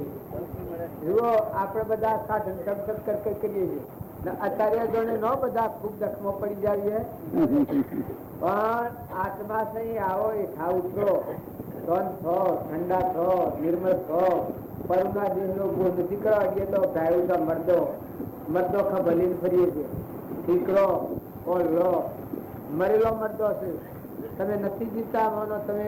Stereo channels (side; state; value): both; identical; correlation 1.00